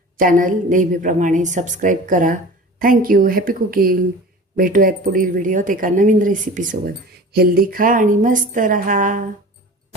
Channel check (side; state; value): both; normal; correlation 0.38